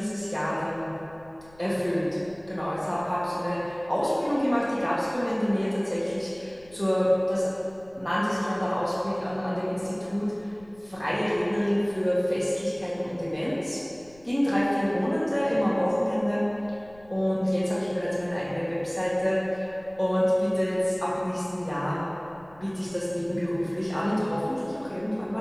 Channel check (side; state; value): left; noise; rumble, 26 dB below the sound